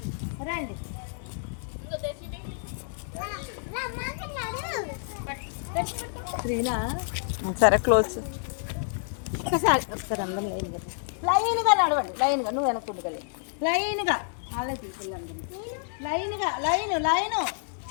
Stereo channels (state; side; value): silent; right; digital silence